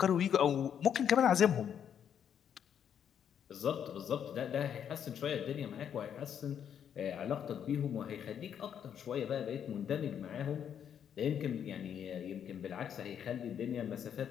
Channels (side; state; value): right; quieter; 8.7 dB